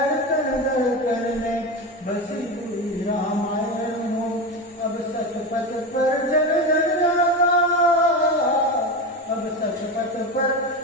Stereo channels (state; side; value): normal; both; correlation 0.20